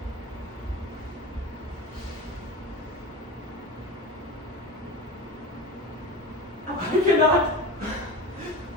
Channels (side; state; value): both; normal; correlation 0.29